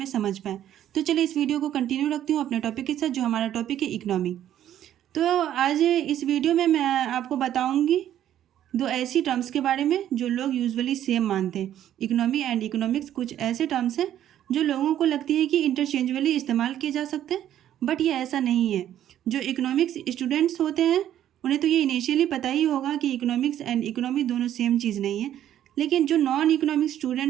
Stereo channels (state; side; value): quieter; left; 11.3 dB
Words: समझ पाएँ। तो चलिए इस वीडियो को कंटिन्यू रखती हूँ अपने टॉपिक के साथ, जो हमारा टॉपिक है इकोनॉमी। तो आज इस वीडियो में मैं आपको बताऊंगी दो ऐसी टर्म्स के बारे में जो लोग यूजुअली सेम मानते हैं। इकोनॉमी एंड इकोनॉमिक्स कुछ ऐसे टर्म्स हैं जो लोगों को लगती है कि इंटरचेंजबली इस्तेमाल किए जा सकते हैं, बट ये ऐसा नहीं है। जो इकोनॉमिक्स स्टूडेंट्स होते हैं उन्हें तो ये इनिशियली पता ही होगा कि इकोनॉमिक्स एंड इकोनॉमी दोनों सेम चीज़ नहीं है, लेकिन जो नॉन इकोनॉमिक्स